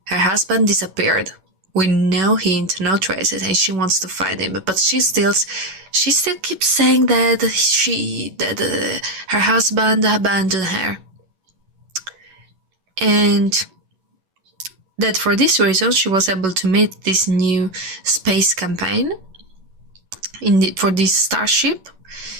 her husband disappeared with no hint, no traces, and she wants to find him. But she still keeps saying that her husband abandoned her, and that for this reason she was able to meet this new space campaign for this starship,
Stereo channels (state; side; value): late; left; 11 ms